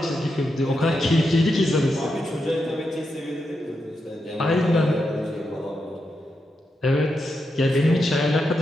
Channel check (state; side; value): normal; both; correlation 0.85